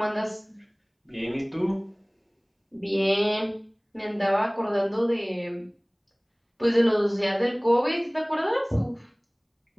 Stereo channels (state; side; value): identical; both; correlation 1.00